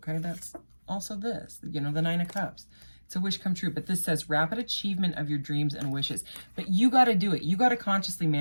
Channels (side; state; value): both; inverted; correlation -1.00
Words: that's also this, you know, the 9 of Cups. It's a wish come true, but this says rapid achievement of your dreams and wishes. But you got to do it. You got to consciously